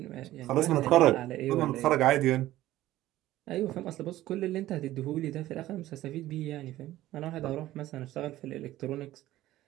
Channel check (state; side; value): quieter; left; 15.1 dB